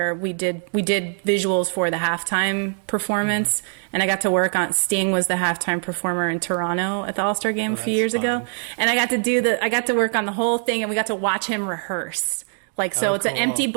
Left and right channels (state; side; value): silent; left; 60 dB below the other